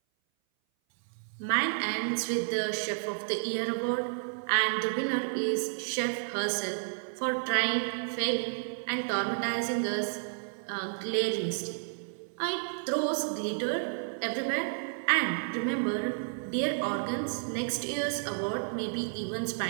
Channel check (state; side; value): silent; left; 57 dB below the other